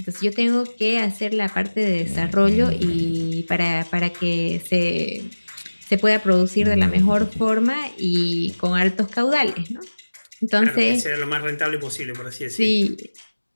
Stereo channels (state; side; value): inverted; both; correlation -1.00